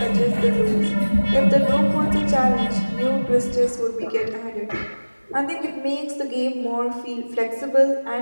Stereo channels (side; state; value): both; inverted; correlation -1.00